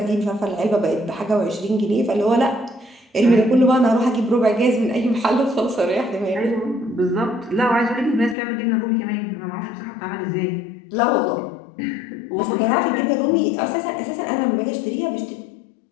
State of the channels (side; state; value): right; drops out; at 8.3 s